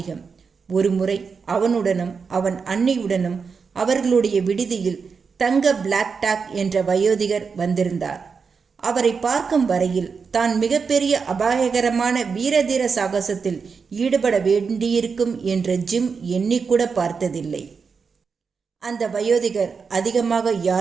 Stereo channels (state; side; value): quieter; left; 5.5 dB